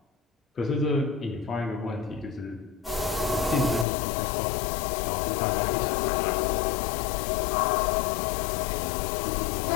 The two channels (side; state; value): right; drops out; at 3.9 s